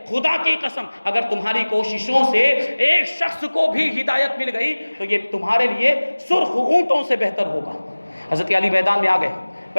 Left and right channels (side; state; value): both; inverted; correlation -1.00